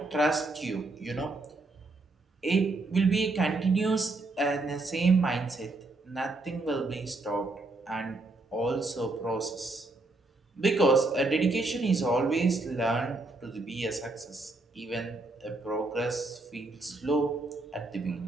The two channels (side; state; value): left; quieter; 3.1 dB